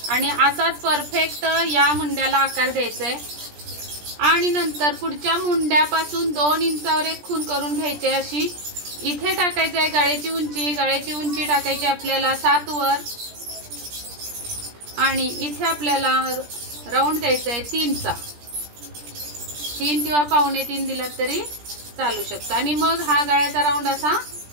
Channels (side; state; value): left; late; 17 ms